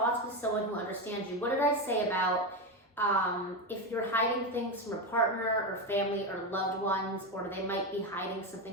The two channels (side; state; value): both; normal; correlation 0.13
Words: with someone who understands you. What did I say about If you're hiding things from a partner or family or loved ones, or they might be hiding